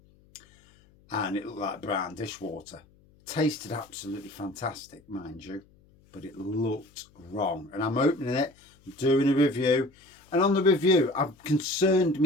and it looked like brown dishwater. Tasted absolutely fantastic, mind you, but it looked wrong. And I'm opening it, doing a review, and on the review I'm concerned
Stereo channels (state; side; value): noise; left; hum, 30 dB below the sound